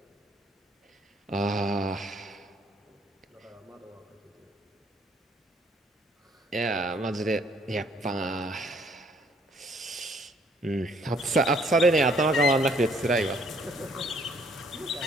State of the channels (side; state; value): both; normal; correlation 0.64